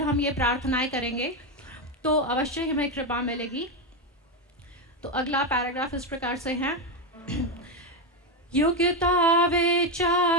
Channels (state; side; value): normal; both; correlation 0.09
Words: हम ये प्रार्थनाएं करेंगे तो अवश्य हमें कृपा मिलेगी। तो अगला पैराग्राफ इस प्रकार से है। योग्यता